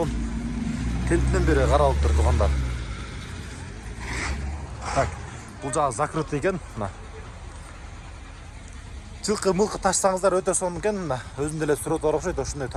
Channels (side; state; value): both; identical; correlation 1.00